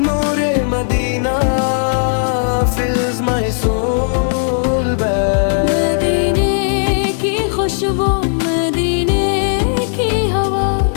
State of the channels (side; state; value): right; silent; digital silence